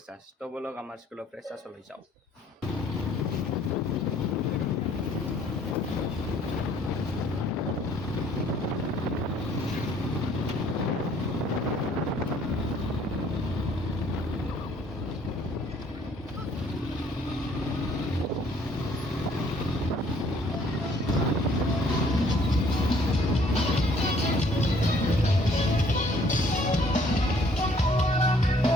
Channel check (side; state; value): both; normal; correlation 0.60